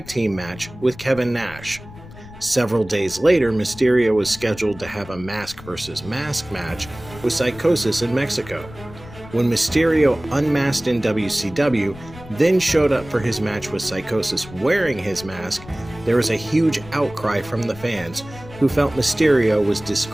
team match with Kevin Nash. Several days later, Mysterio was scheduled to have a mask versus mask match with Psychosis in Mexico. When Mysterio unmasked in WCW, then showed up for his match with Psychosis wearing his mask, there was a huge outcry from the fans who felt Mysterio was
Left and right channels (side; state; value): left; noise; rumble, 17 dB below the sound